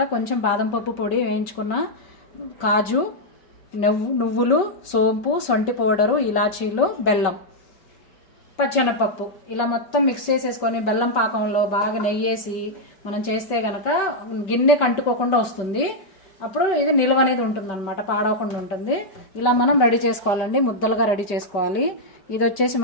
కొంచెం బాదం పప్పు పొడి వేయించుకున్న, కాజు, నువ్వులు, సోంపు, సొంటి పౌడరు, ఇలాచీలు, బెల్లం, పచ్చెనపప్పు ఇలా మొత్తం మిక్స్ చేసేసుకొని బెల్లం పాకంలో బాగా నెయ్యేసి మనం చేస్తే గనక గిన్నె కంటుకోకుండా వస్తుంది. అప్పుడు ఇది నిల్వ అనేది ఉంటుంది అనమాట, పాడవకుండా ఉంటుంది. ఇలా మనం రెడీ చేసుకోవాలండి, ముద్దలుగా రెడీ చేసుకోవాలి. ఇది వచ్చేసి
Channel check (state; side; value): late; right; 5.2 ms